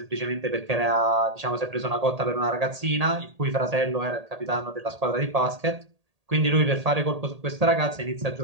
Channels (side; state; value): left; late; 1.8 ms